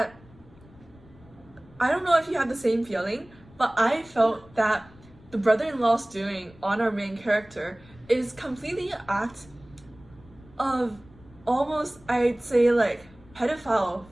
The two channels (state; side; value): noise; left; rumble, 25 dB below the sound